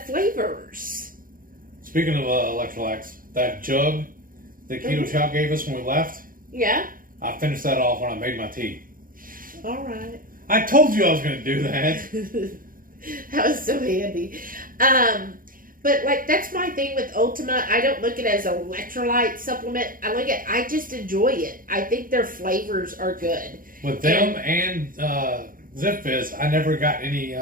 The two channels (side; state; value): left; late; 0.41 ms